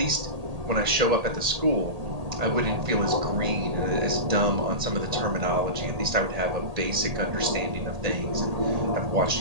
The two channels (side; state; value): left; late; 1.8 ms